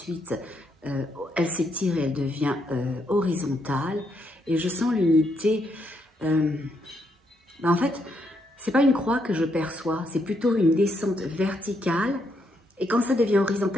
elle s'étire et elle devient horizontale. Et je sens l'unité. En fait, c'est pas une croix que je perçois, c'est plutôt une descente verticale. Et quand ça devient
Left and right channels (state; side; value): normal; both; correlation 0.77